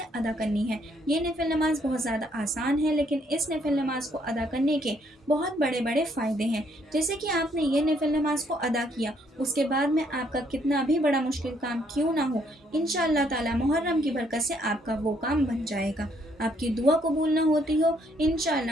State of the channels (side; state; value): both; normal; correlation 0.69